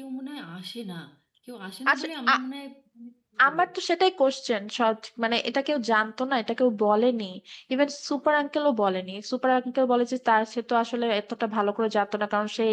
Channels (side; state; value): both; identical; correlation 1.00